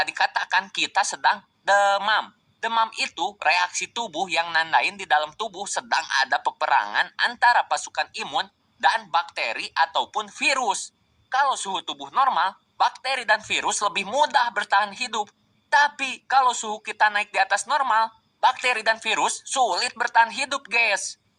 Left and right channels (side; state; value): both; identical; correlation 1.00